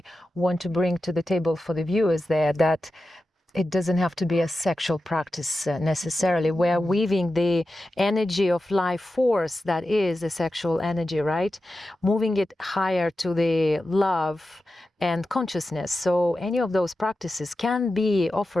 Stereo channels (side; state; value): both; normal; correlation 0.92